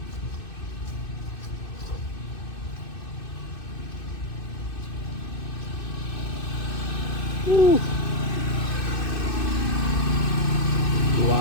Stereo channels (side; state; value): right; late; 2.6 ms